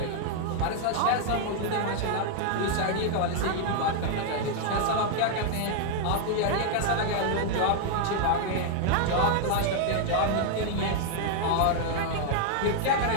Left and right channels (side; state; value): both; different; correlation 0.00